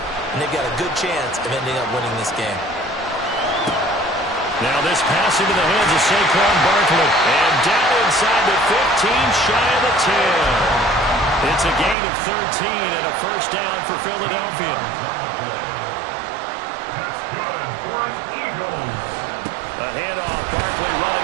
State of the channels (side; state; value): left; drops out; at 12.0 s